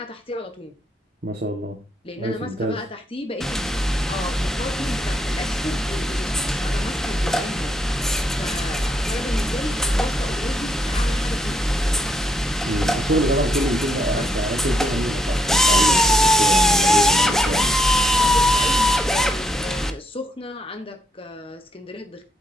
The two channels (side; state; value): both; normal; correlation 0.75